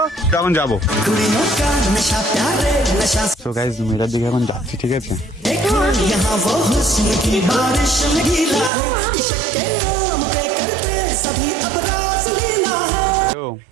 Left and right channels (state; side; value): drops out; left; at 8.7 s